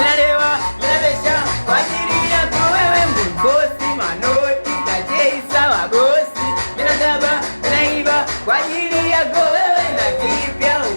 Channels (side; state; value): both; inverted; correlation -1.00